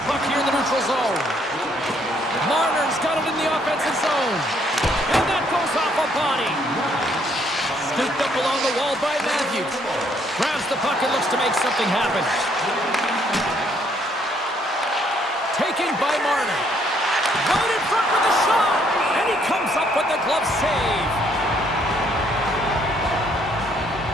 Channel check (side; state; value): both; normal; correlation 0.68